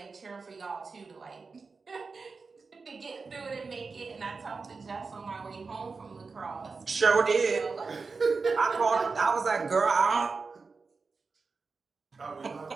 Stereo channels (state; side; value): quieter; left; 4.5 dB